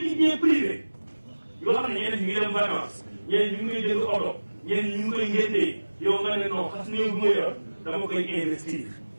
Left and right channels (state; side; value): inverted; both; correlation -1.00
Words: bien privé. yoo xam ne ñeneen ñu ngi dem vacances. ñeneen ñu ngi koy jënd oto ñeneen ñu ngi koy ngéntee yow nga ne non xas néew bu ma yor dama koy investir